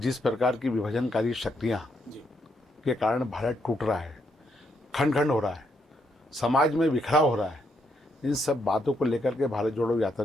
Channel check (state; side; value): normal; both; correlation 0.77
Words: जिस प्रकार की विभाजनकारी शक्तियाँ जी के कारण भारत टूट रहा है, खंड खंड हो रहा है, समाज में बिखराव हो रहा है, इन सब बातों को लेकर के भारत जोड़ो यात्रा